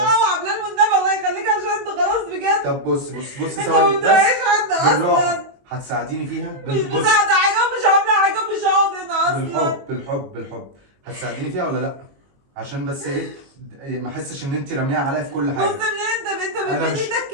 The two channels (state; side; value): late; left; 22 ms